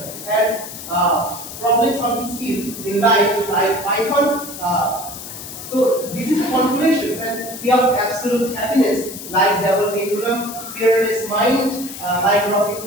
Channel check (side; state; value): left; noise; hiss, 11 dB below the sound